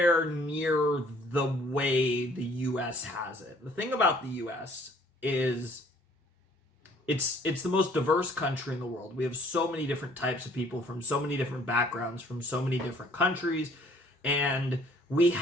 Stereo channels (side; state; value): both; normal; correlation 0.58